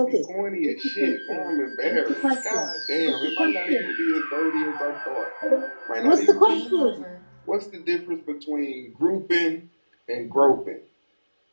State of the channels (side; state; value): both; inverted; correlation -1.00